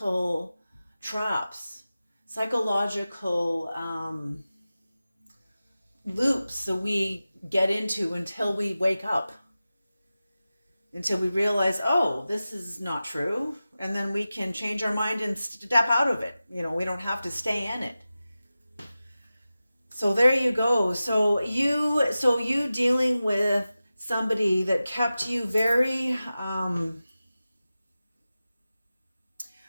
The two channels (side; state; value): both; inverted; correlation -0.95